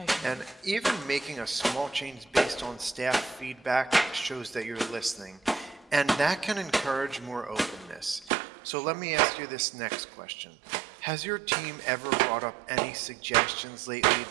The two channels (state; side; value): drops out; left; at 8.3 s